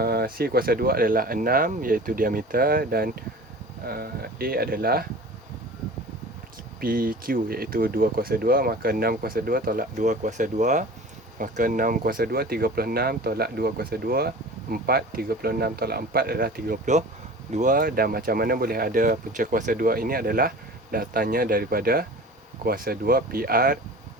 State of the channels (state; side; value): normal; both; correlation 0.39